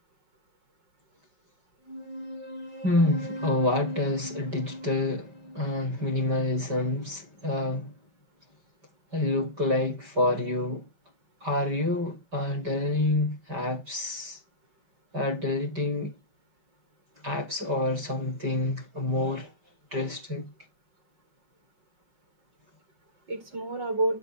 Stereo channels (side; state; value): left; late; 5.1 ms